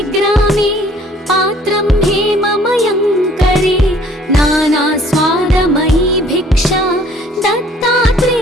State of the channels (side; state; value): both; normal; correlation 0.57